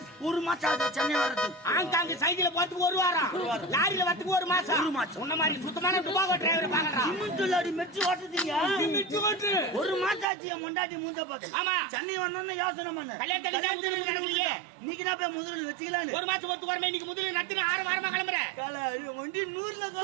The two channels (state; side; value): drops out; left; at 10.2 s